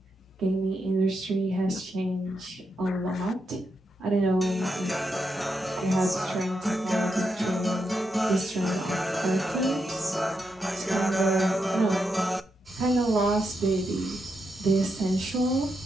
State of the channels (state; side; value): normal; both; correlation 0.84